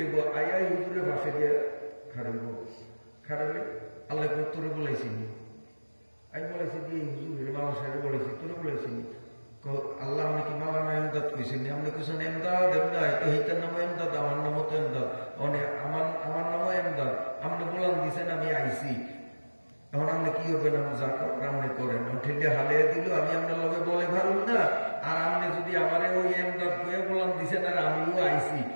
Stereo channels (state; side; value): inverted; both; correlation -1.00